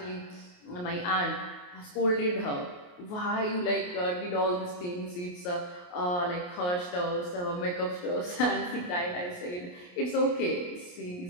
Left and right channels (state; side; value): late; right; 28 ms